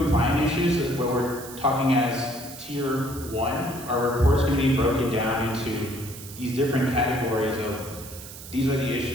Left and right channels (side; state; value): right; noise; hiss, 14 dB below the sound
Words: issues where we're talking as tier 1, our report is going to be broken down into these different categories of these are the